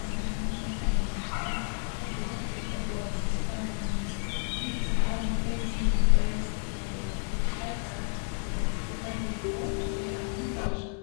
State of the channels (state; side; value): silent; right; 57 dB below the other